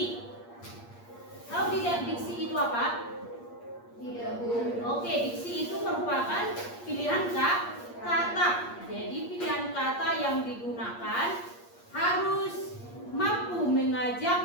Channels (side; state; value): right; late; 8.5 ms